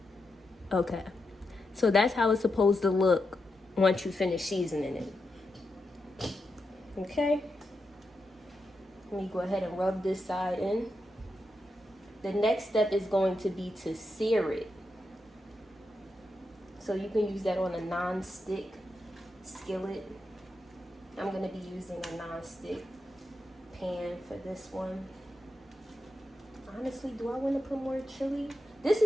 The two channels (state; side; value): normal; both; correlation 0.86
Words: Okay, so that's how it's supposed to look once you finish seasoning it. Okay, let me go ahead and rub this side in. The next step is going to be to sear it. So you can use that on a non-stick skillet. I'm going to be using a non-stick pan for this one. Honestly, do I want to put more chili? This